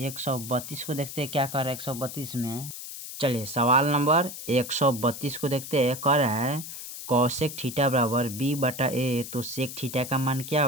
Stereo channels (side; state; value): left; noise; hiss, 10 dB below the sound